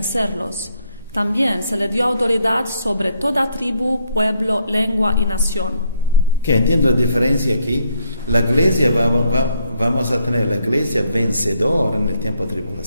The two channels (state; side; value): inverted; both; correlation -0.72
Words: También se le dio autoridad sobre toda tribu, pueblo, lengua y nación. Entiendo la diferencia aquí. La iglesia vamos a tener la iglesia vencedora en el tiempo de